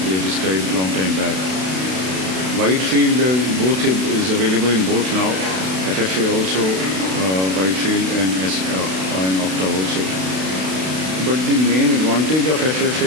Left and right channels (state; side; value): late; left; 32 ms